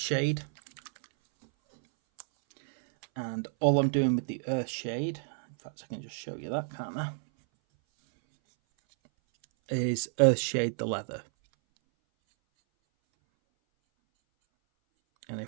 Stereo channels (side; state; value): left; silent; 58 dB below the other